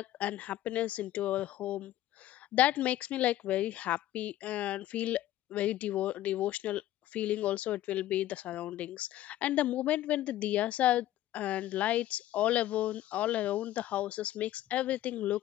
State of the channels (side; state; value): right; quieter; 13.9 dB